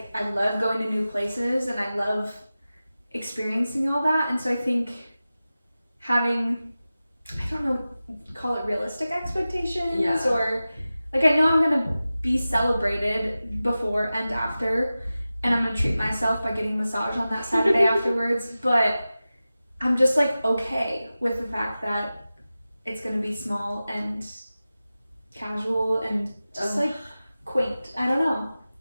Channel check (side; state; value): both; inverted; correlation -0.95